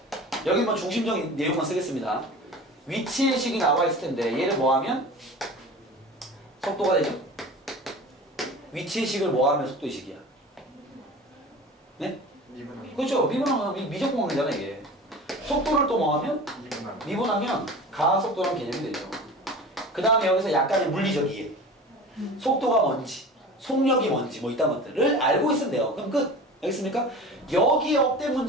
여기 뭐 중심적인 내용만 쓰겠습니다. 위치의 식이 나와 있을 텐데 얘를 뭐 하면 속도가 되죠? 위치의 식을 뭐 하면 속도의 식이야? 네? 미분하면. 그렇죠. 미분하면 미적분하잖아 이게. 속도를 또 뭐 하면? 미분하면 가속도라는 개념이 되죠. 그 다음에 여기서 약간의 물리적 이해. 속도가 뭔지, 속력이 뭔지 뭐 이딴 것들을 알고 있으면 돼요. 그럼 끝. 알겠습니까? 여기에 업된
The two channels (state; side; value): normal; both; correlation 0.37